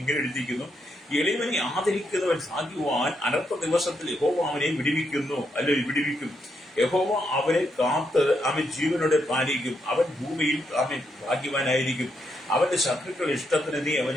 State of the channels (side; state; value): both; normal; correlation 0.79